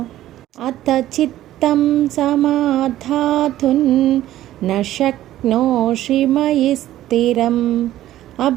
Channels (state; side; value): quieter; left; 13.8 dB